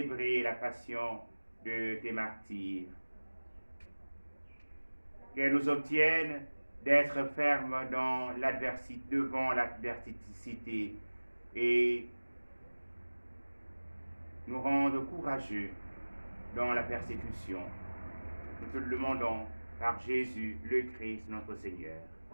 la passion de tes martyrs. Qu'elle nous obtienne d'être fermes dans l'adversité, devant l'adversité et nous rende courageux dans la persécution. Nous te le demandons par Jésus, le Christ, notre Seigneur.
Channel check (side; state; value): both; inverted; correlation -1.00